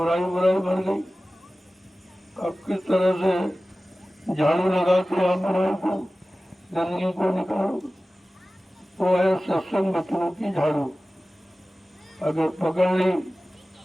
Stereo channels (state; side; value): normal; both; correlation 0.96